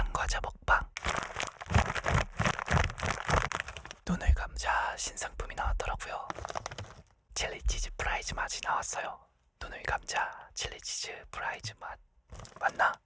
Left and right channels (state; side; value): identical; both; correlation 1.00